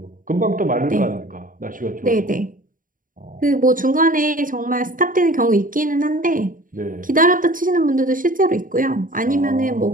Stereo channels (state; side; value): late; left; 0.39 ms